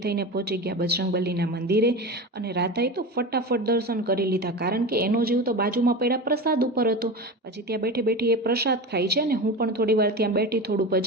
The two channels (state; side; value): normal; both; correlation 0.27